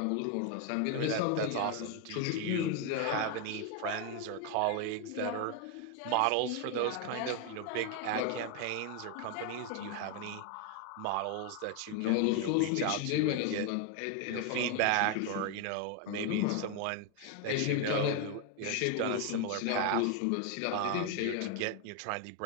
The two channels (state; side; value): different; both; correlation 0.01